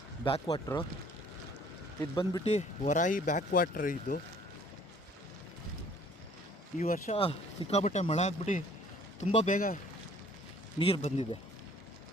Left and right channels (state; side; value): normal; both; correlation 0.56